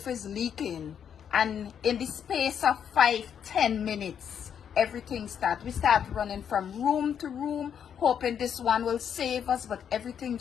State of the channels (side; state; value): right; quieter; 8.3 dB